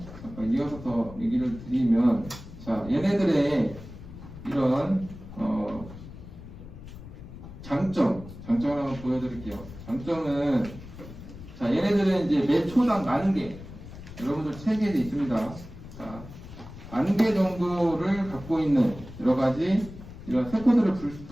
잠깐 이어서 더 얘기를 드리면, 자, 얘네들의 이런 장점을 한번 보여드릴게요. 장점은, 자, 얘네들은 이제 매 초당 10,000개, 여러분들 책에 있습니다. 자, 10,000개 정도를 갖고 있는 여러 가지 이런 세포들을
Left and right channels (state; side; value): noise; left; rumble, 14 dB below the sound